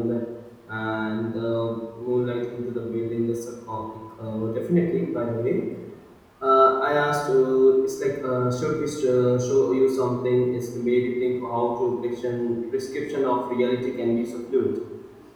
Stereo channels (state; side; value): identical; both; correlation 1.00